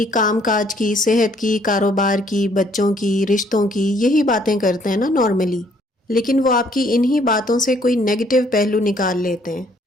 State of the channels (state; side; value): normal; both; correlation 0.64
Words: کام کاج کی، صحت کی، کاروبار کی، بچوں کی، رشتوں کی، یہی باتیں کرتے ہیں نا نارملی، لیکن وہ آپ کی انہی باتوں سے کوئی نیگیٹو پہلو نکال لیتے ہیں۔